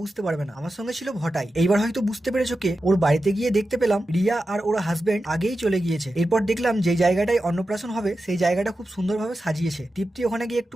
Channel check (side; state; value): both; normal; correlation 0.91